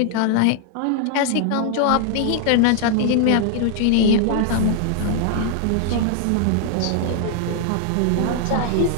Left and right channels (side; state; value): both; different; correlation 0.00